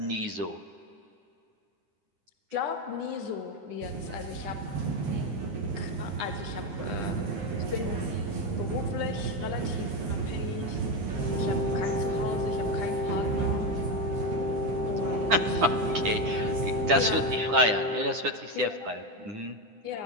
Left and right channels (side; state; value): left; late; 9.9 ms